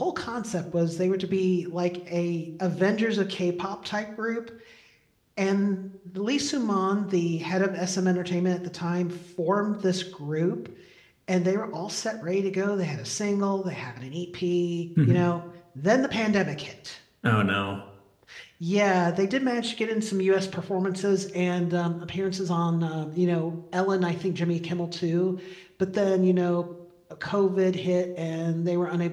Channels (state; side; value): identical; both; correlation 1.00